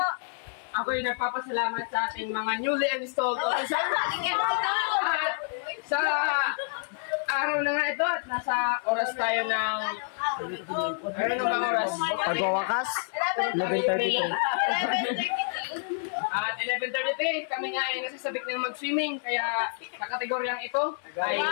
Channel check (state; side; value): silent; right; 59 dB below the other